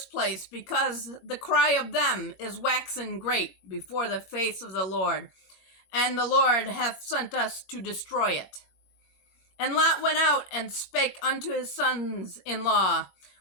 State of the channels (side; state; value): right; late; 20 ms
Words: place, because the cry of them is waxen great before the face of the Lord, and the Lord hath sent us to destroy it. And Lot went out and spake unto his sons-in-law,